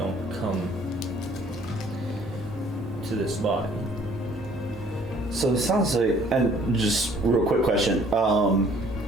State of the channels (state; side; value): normal; both; correlation 0.58